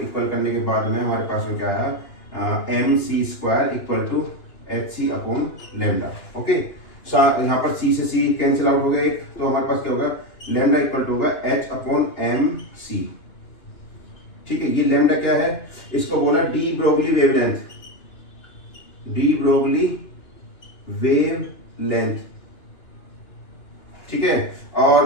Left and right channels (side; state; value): right; late; 2.8 ms